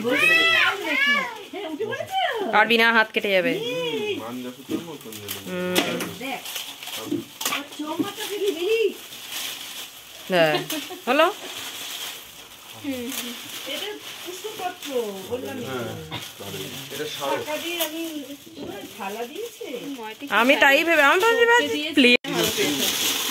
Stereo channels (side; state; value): both; identical; correlation 1.00